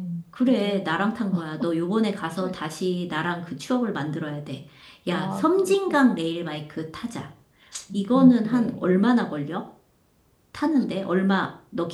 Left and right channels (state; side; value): identical; both; correlation 1.00